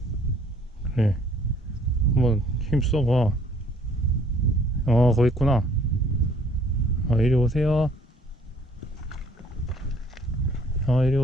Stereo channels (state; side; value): normal; both; correlation 0.60